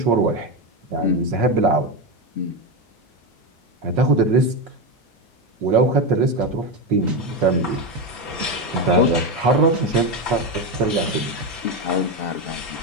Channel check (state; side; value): normal; both; correlation 0.13